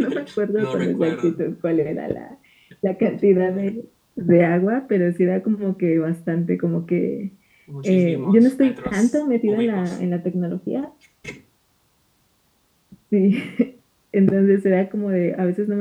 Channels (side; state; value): both; identical; correlation 1.00